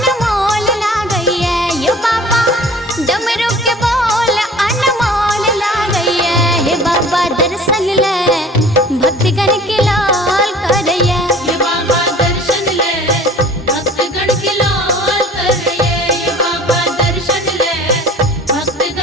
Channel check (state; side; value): normal; both; correlation 0.46